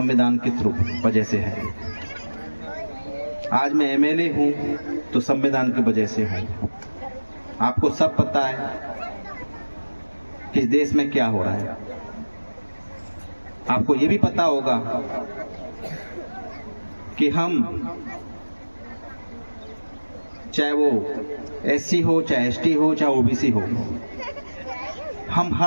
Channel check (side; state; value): both; inverted; correlation -1.00